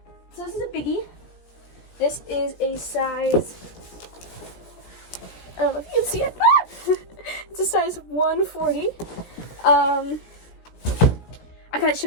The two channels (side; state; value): right; late; 17 ms